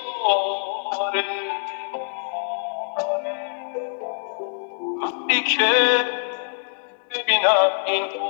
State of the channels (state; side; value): silent; right; digital silence